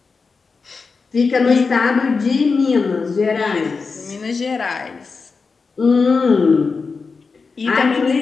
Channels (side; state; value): right; quieter; 4.7 dB